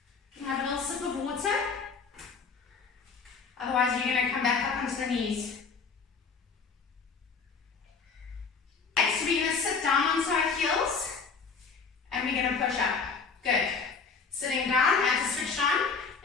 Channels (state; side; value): quieter; right; 5.1 dB